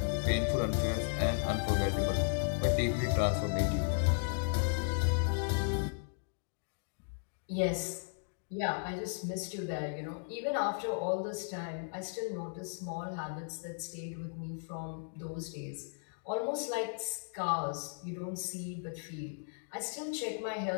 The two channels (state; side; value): silent; right; digital silence